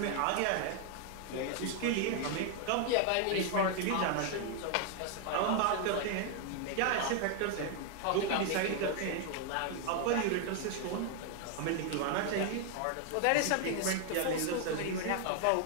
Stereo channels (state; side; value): different; both; correlation 0.00